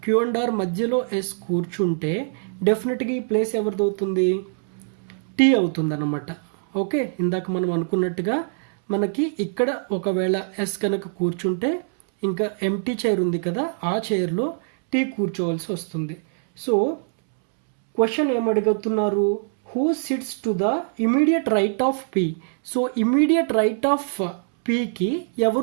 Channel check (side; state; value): left; silent; 63 dB below the other